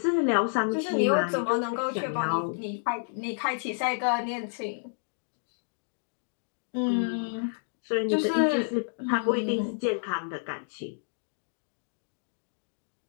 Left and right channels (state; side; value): silent; right; digital silence